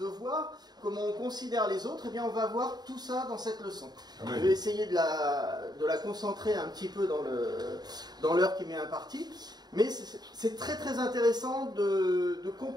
Comment on considère les autres? Eh bien, on va voir tout ça dans cette leçon. Je vais essayer de la concentrer un petit peu dans l'heure qui m'est impartie. Mais c'est très très intéressant de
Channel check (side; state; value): left; late; 0.20 ms